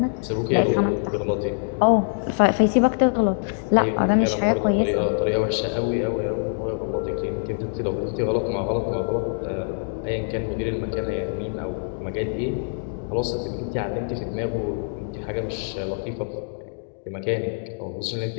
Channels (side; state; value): right; silent; digital silence